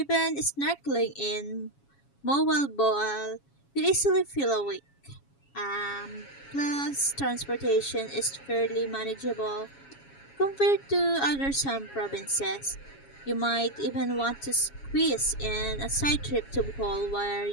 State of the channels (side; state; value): right; late; 7.2 ms